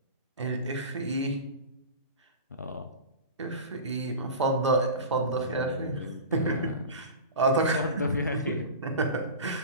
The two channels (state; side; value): inverted; both; correlation -0.32